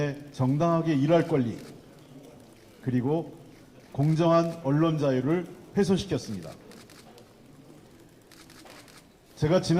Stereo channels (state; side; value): identical; both; correlation 1.00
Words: 정당하게 일할 권리, 그리고 공정한 언론 자유를 훼손시켰습니다. 제가